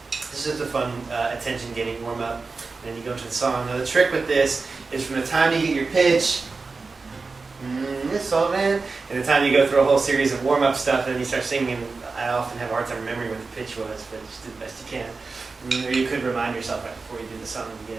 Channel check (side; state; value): left; quieter; 4.2 dB